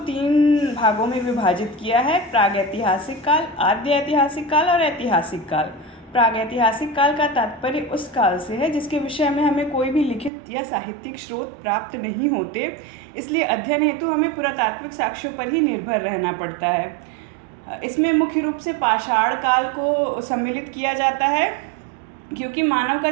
भागों में विभाजित किया है: प्रागैतिहासिक काल, आद्य ऐतिहासिक काल और ऐतिहासिक काल। प्रागैतिहासिक काल का तात्पर्य उस काल से है जिसके विषय में हमें कोई भी लिखित या साहित्यिक स्रोत प्राप्त नहीं होते, इसलिए अध्ययन हेतु हमें पुरातात्विक साक्ष्यों पर ही निर्भर रहना पड़ता है। इसमें मुख्य रूप से पाषाण काल को सम्मिलित किया जाता है, क्योंकि मानव का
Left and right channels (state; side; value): drops out; left; at 10.3 s